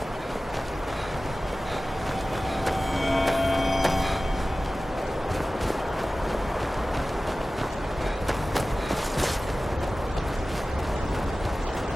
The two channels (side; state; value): both; normal; correlation 0.96